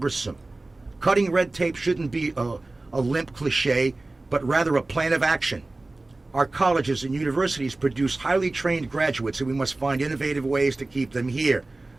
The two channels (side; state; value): left; quieter; 3.0 dB